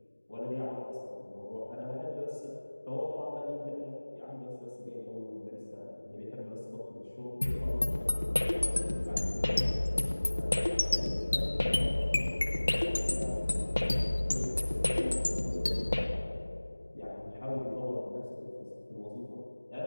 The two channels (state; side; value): inverted; both; correlation -1.00